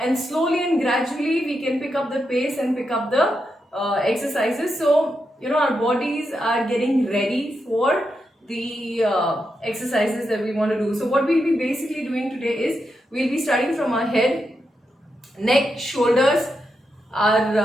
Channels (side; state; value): both; normal; correlation 0.85